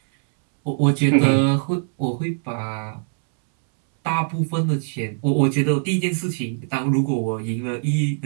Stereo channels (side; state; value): left; silent; 65 dB below the other